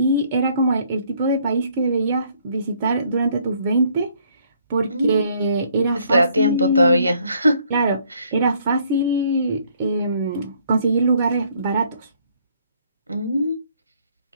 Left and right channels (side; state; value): both; inverted; correlation -0.65